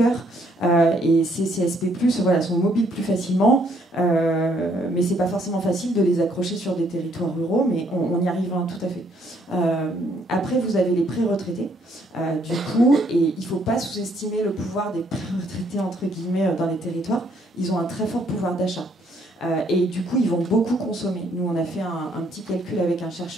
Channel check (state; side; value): normal; both; correlation 0.68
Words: Et ces CSP+, voilà, sont mobiles plus facilement, mais c'est pas forcément facile de les accrocher sur des territoires ruraux, mais on y arrive tout à fait. Après, vous avez les pré-retraités, du coup, et il faut pas sous-estimer le pouvoir des pré-retraités, entre guillemets, dans les territoires. Ils ont un très fort pouvoir d'achat. Et du coup, ils vont beaucoup consommer. Nous, on a fait un petit calcul avec un